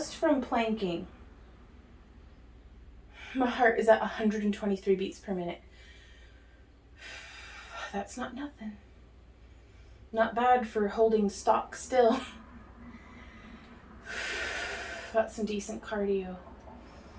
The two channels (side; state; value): both; identical; correlation 1.00